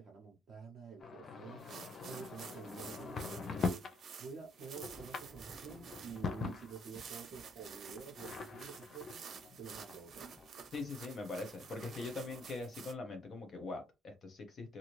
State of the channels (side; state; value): both; normal; correlation 0.69